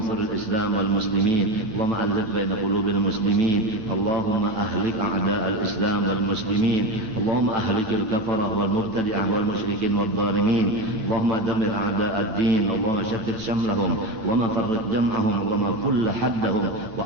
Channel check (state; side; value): late; left; 9.2 ms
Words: الإسلام والمسلمين. اللهم ألف بين قلوب المسلمين. اللهم أهلك أعداء الإسلام والمسلمين. اللهم أهلك الكفرة والمبتدعة والمشركين والظالمين. اللهم دمر أعداء الدين. اللهم شتت شملهم. اللهم فرق جمعهم. اللهم كل حدهم